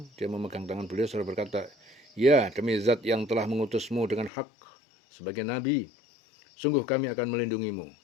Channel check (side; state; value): right; drops out; at 4.3 s